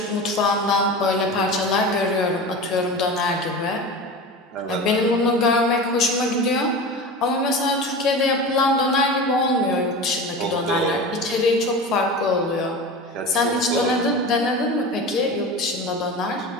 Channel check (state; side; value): normal; both; correlation 0.30